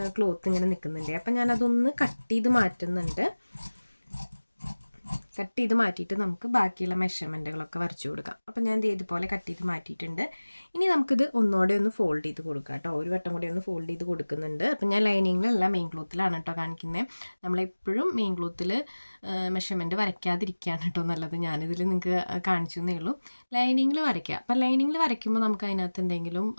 ക്ലോത്ത് ഇങ്ങനെ നിൽക്കുന്നുണ്ട്. അപ്പം ഞാനതൊന്ന് കട്ട് ചെയ്ത് മാറ്റുന്നുണ്ട്. കട്ട് ചെയ്ത് മാറ്റിയിട്ട് നമുക്ക് ബാക്കിയുള്ള മെഷർമെൻറ്റുകളൊക്കെ വരച്ചു കൊടുക്കാം. അപ്പം ഞാൻ ഇതുപോലെ കട്ട് ചെയ്ത് മാറ്റിയിട്ടുണ്ട്. ഇനി നമുക്കിത് ഒന്നുകൂടെ ഒന്ന് ഫോൾഡ് ചെയ്ത് കൊടുക്കാം കേട്ടോ. ഒരു വട്ടം കൂടി ഒന്ന് ഫോൾഡ് ചെയ്ത് കൊടുക്കുന്നുണ്ട്. അപ്പം ഞാൻ ലൈനിങ്ങിലല്ല മെയിൻ ക്ലോത്തിലാണ് കേട്ടോ കാണിക്കുന്നത്. നമ്മളെപ്പോഴും മെയിൻ ക്ലോത്തിൽ മെഷർമെൻറ്റ് വരയ്ക്കാതിരിക്കുകയാണ് കേട്ടോ നല്ലത്. ഞാനിതിൽ നിങ്ങൾക്ക് കാണിച്ചു എന്നേ ഉള്ളൂ. ലൈനിങ്ങിൽ വരയ്ക്കുക. അപ്പം ലൈനിങ്ങിൽ വരയ്ക്കുമ്പോൾ നമുക്ക് അതിനകത്ത് എന്തെങ്കിലും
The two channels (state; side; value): inverted; both; correlation -1.00